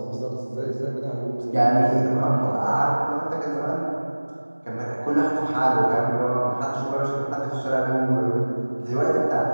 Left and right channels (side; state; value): both; inverted; correlation -1.00